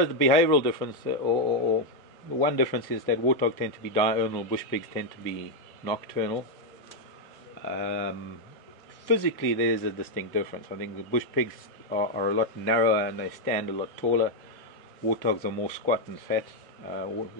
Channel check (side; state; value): both; normal; correlation 0.01